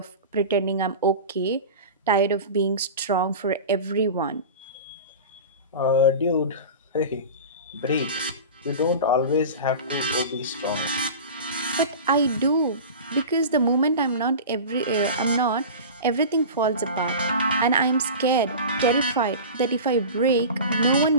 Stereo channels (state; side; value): inverted; both; correlation -0.32